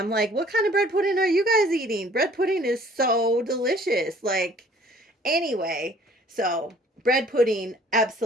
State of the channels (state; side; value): normal; both; correlation 0.54